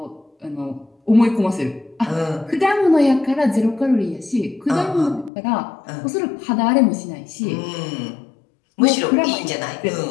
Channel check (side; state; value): right; drops out; at 5.3 s